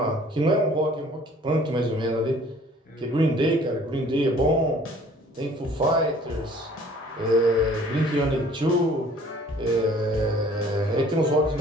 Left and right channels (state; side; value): normal; both; correlation 0.54